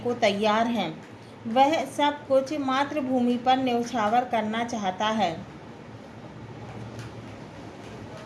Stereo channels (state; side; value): identical; both; correlation 1.00